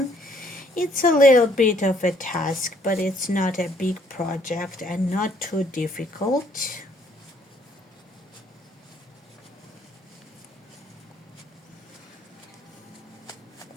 It's a little bit of a task, but it's not a big project and not too difficult.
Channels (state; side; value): normal; both; correlation 0.65